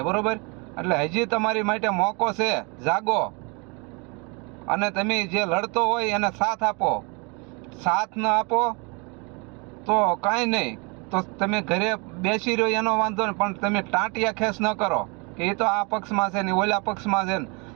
બરોબર? એટલે હજી તમારી માટે મોકો છે, જાગો અને તમે જે લડતો હોય એને સાથ આપો. સાથ ન આપો તો કાંઈ નહીં, તો તમે ઘરે બેસી રહ્યો એનો વાંધો નહીં, પણ તમે ટાંટિયા ખેસ ન કરો કે એ તો આ પક્ષમાં છે ને ઓલા પક્ષમાં છે ને.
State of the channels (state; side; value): quieter; left; 31.1 dB